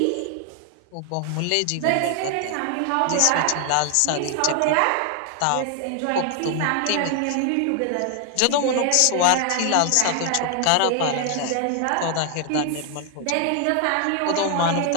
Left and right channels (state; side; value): different; both; correlation 0.00